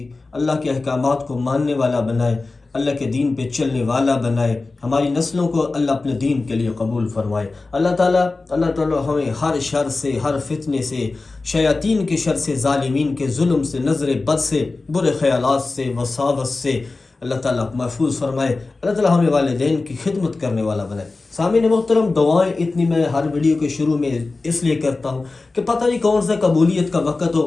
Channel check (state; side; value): quieter; right; 3.6 dB